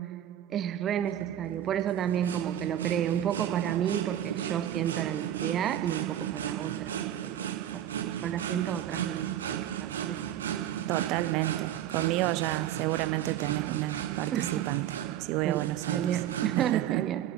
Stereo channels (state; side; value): quieter; left; 11.4 dB